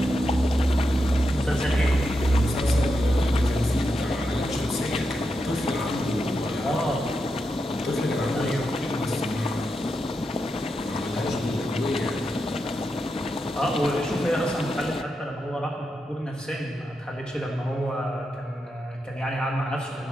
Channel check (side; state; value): both; normal; correlation 0.86